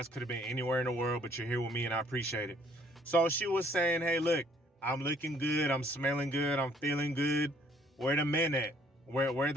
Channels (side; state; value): both; normal; correlation 0.62